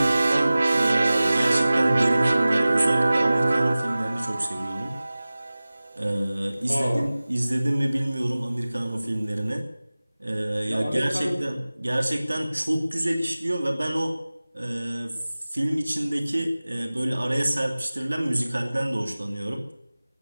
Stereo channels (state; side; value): inverted; both; correlation -0.98